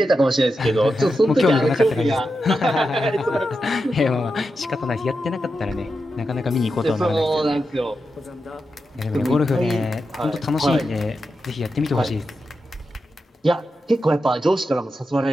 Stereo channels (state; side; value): normal; both; correlation 0.89